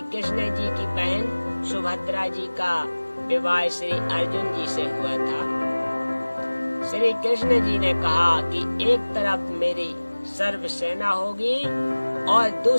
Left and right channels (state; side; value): inverted; both; correlation -1.00